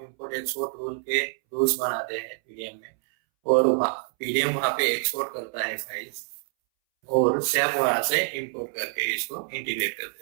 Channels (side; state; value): left; silent; 61 dB below the other